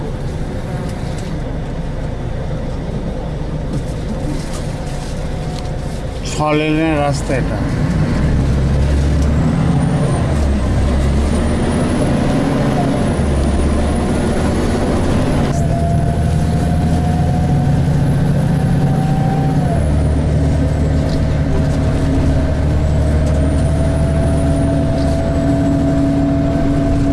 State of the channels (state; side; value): identical; both; correlation 1.00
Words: ছলেনের রাস্তা এটা।